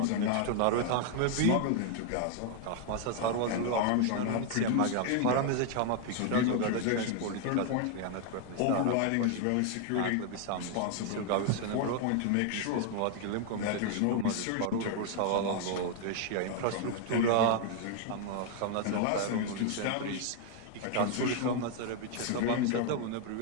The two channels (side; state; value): both; different; correlation 0.00